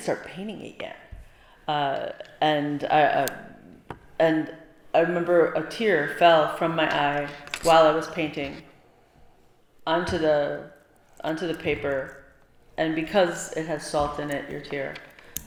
painting it yet. And I remember a tear fell from my eye while I was painting onto the paper, and because it has salt in it, your tear,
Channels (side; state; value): both; identical; correlation 1.00